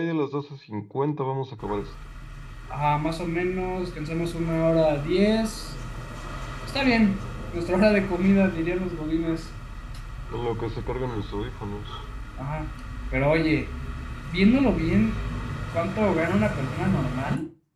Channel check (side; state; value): both; identical; correlation 1.00